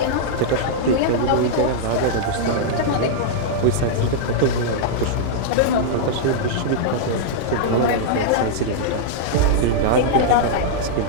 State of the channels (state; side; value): different; both; correlation -0.02